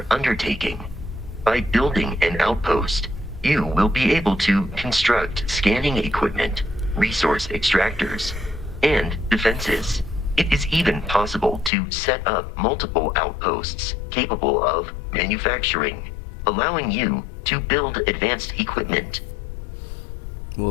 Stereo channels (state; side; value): drops out; right; at 11.7 s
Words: undertaking. By building an outpost, you will be able to construct scanning equipment, resource extractors, and defenses. It is even possible to set up multiple outposts capable of manufacturing allowing you to build advanced equipment.